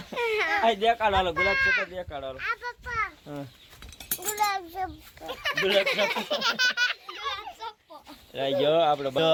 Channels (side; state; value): both; identical; correlation 1.00